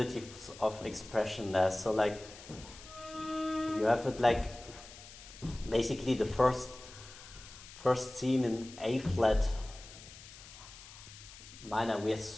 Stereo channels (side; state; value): left; noise; hiss, 17 dB below the sound